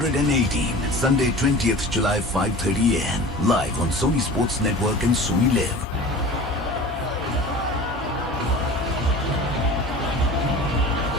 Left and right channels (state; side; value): normal; both; correlation 0.38